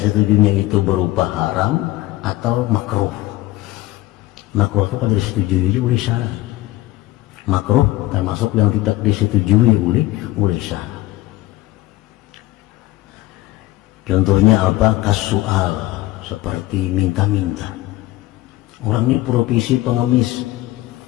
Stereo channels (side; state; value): right; quieter; 17.5 dB